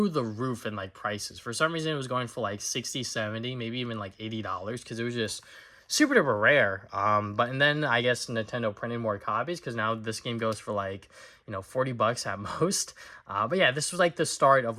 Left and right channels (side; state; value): both; identical; correlation 1.00